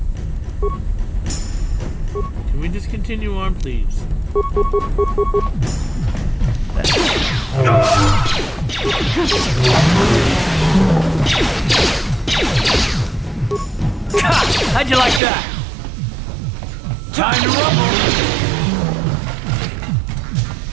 Can we just continue on, please? How'd you like that? Time to rumble!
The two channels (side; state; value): left; drops out; at 15.2 s